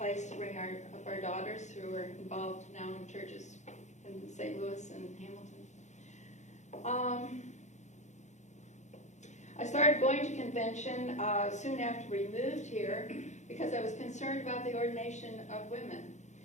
to bring up our daughters who are involved now in churches in St. Louis and Hamilton. I started going to convention soon after we moved here because I was concerned about the ordination of women,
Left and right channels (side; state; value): right; late; 0.34 ms